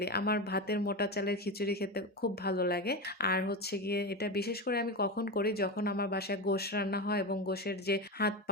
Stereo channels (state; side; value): normal; both; correlation 0.19